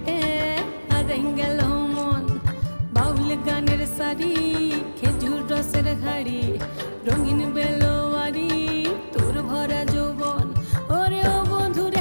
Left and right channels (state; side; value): inverted; both; correlation -1.00